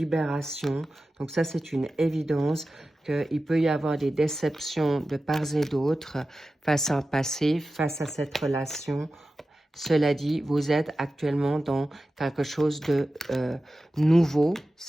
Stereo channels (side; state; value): both; normal; correlation 0.94